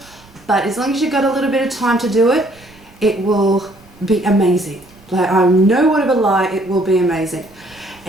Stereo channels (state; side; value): noise; right; rumble, 27 dB below the sound